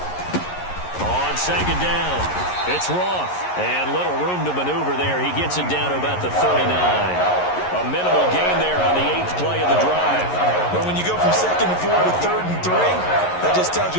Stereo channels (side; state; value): right; late; 11 ms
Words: On second down, it's Roth. And little room to maneuver there. He gets it down to about the 39. A minimal gain there on the 8th play of the drive. But when you go from 2nd and 4 to 3rd and 3, that just tells